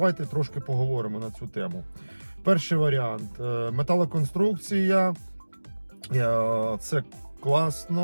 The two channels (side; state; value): both; inverted; correlation -1.00